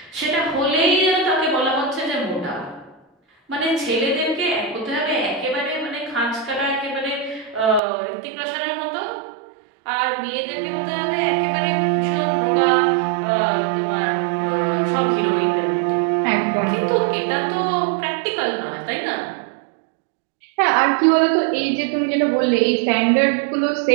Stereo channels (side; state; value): left; drops out; at 7.8 s